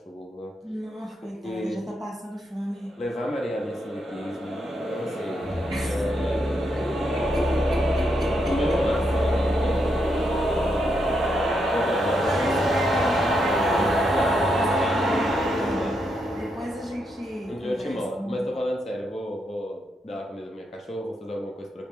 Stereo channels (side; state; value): both; normal; correlation 0.80